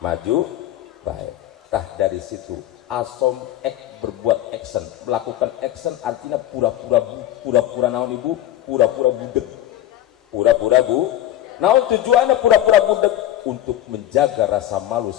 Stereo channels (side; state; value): right; quieter; 12.9 dB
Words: Tah dari situ Asom berbuat action, melakukan action artinya pura-pura naon ibu, pura-pura budeg, naon tujuannya pura-pura budeg untuk menjaga rasa malu